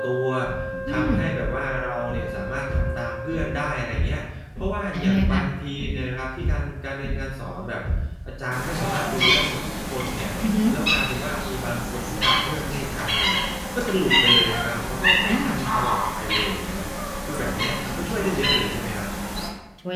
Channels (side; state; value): both; identical; correlation 1.00